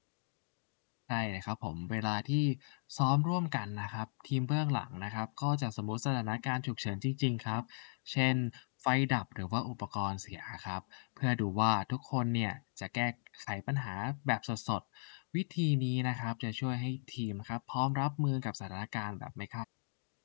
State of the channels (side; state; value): right; silent; digital silence